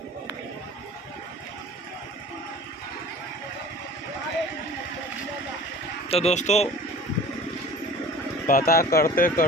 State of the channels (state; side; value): normal; both; correlation 0.42